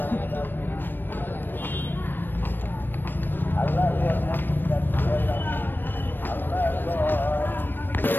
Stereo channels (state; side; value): late; right; 0.094 ms